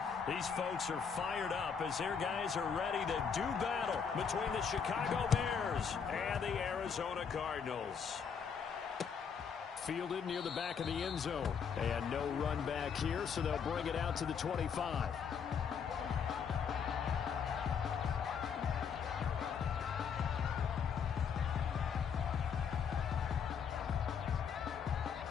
These folks are fired up as their guys are ready to do battle between the Chicago Bears and the Arizona Cardinals. Fielded near the back of the end zone. And no run back here, so they'll bring it out to the 25.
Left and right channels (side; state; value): right; quieter; 6.7 dB